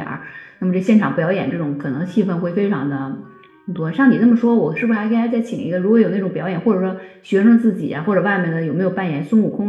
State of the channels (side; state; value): both; identical; correlation 1.00